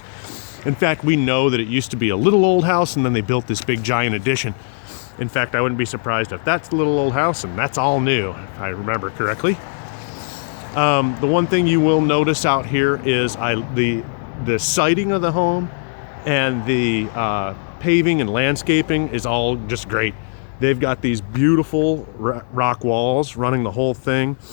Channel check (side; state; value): right; silent; digital silence